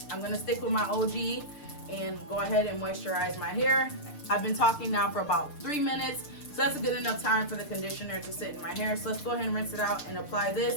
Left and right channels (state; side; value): late; right; 6.7 ms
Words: gonna stick with my OG and go ahead and moisturize my hair. I've been talking now for about 3 minutes. So that's a good enough time for the conditioner to sit in my hair. So let's go ahead and rinse it out and apply